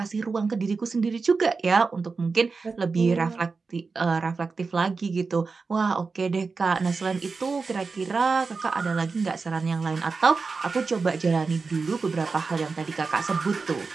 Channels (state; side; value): quieter; left; 4.5 dB